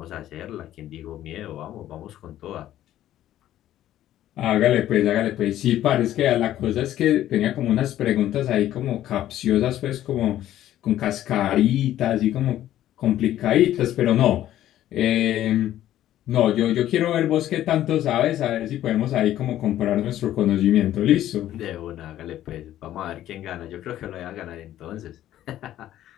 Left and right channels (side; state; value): right; quieter; 12.8 dB